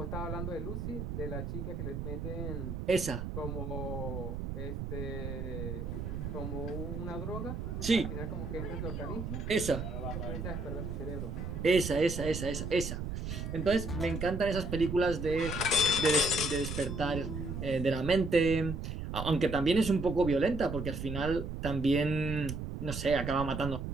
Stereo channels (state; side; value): noise; right; rumble, 5 dB below the sound